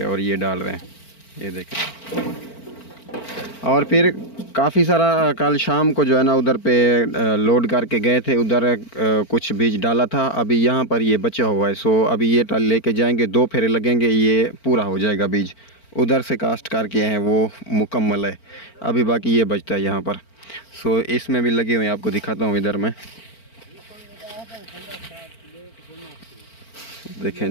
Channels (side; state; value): right; late; 4.4 ms